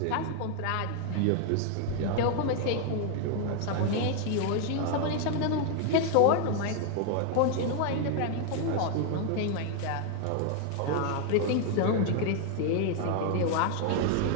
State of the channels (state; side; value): different; both; correlation 0.00